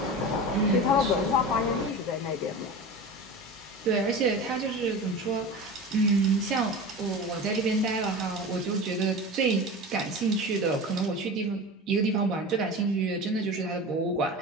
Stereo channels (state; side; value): normal; both; correlation 0.31